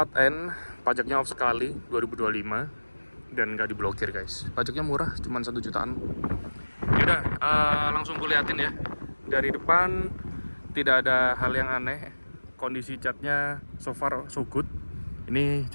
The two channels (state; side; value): inverted; both; correlation -1.00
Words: N, pajaknya off sekali 2025 dan nggak diblokir guys. Pajaknya murah, cuma 1 jutaan. Yaudah, langsung kuliatin ya. Dari depan tidak ada hal yang aneh. Kondisi catnya so far so good. Ini